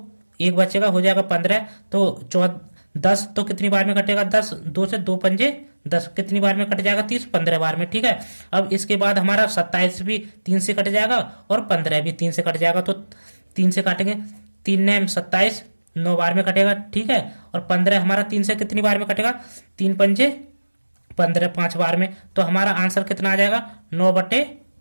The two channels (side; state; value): both; inverted; correlation -1.00